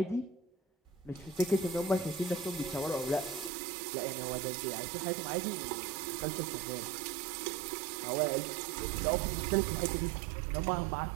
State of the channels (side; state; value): left; drops out; at 3.5 s